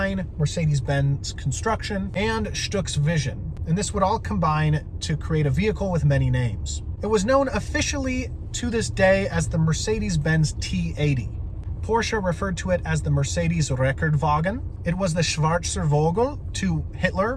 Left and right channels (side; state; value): both; identical; correlation 1.00